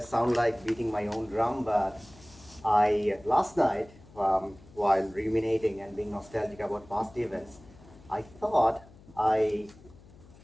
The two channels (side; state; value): left; noise; hum, 23 dB below the sound